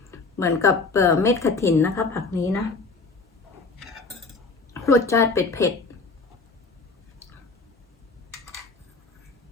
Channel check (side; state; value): right; quieter; 4.0 dB